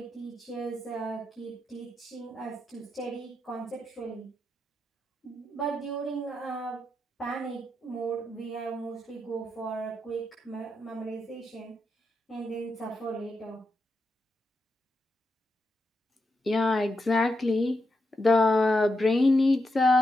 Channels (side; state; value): both; normal; correlation 0.85